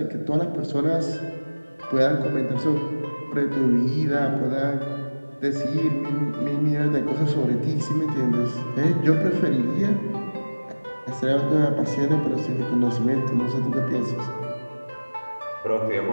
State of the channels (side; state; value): both; inverted; correlation -1.00